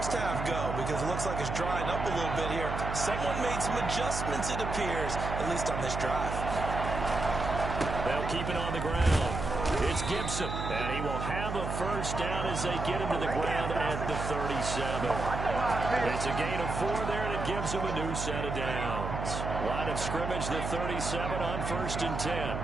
half go? Because it looks like it's drying up a little bit here. Someone made some adjustments, it appears, at least on this drive. They'll keep it on the ground. It's Gibson, and he will have a first down as they get him to the ground at the 37. It's a gain of 4 there, and it gives them a new set of downs. Line of scrimmage, the 37 on 1st and 10.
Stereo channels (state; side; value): noise; right; hum, 4 dB below the sound